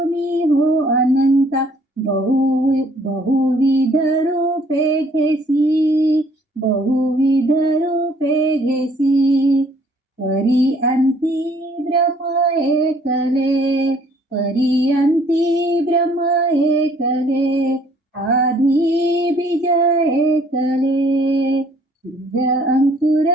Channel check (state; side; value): normal; both; correlation 0.60